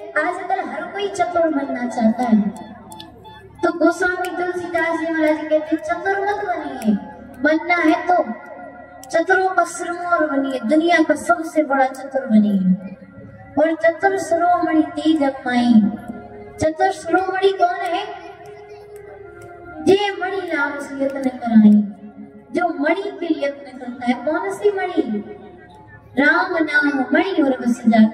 आजकल हर कोई चतुर बनना चाहता है, तो गोस्वामी तुलसीदास जी महाराज कहते चतुर मत बनिए, बनना है तो चतुरों का सिरमौर बनिए, दुनिया का सबसे बड़ा चतुर बनिए। और चतुर शिरोमणि तेरी जगमाई। चतुर शिरोमणि कौन है? जे मणि नाम से यत्न कराई, जो मणि के लिए यत्न करता है। कौन सी मणि? राम नाम मणि और बस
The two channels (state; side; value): identical; both; correlation 1.00